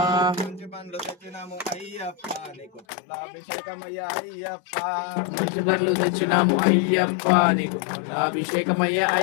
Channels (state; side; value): drops out; right; at 2.9 s